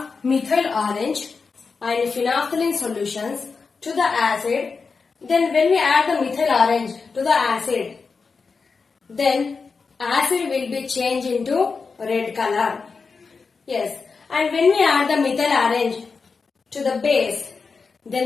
methyl orange and phenolphthalein solutions to the acid, then when we add the methyl orange to the acid, then acid will be changed into red color. Yes, and when we add the methyl orange to the base,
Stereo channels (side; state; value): right; quieter; 4.8 dB